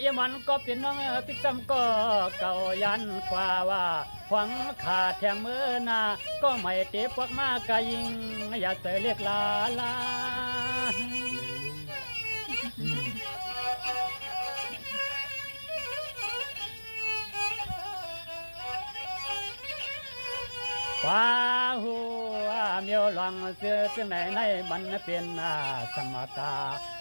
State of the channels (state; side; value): inverted; both; correlation -1.00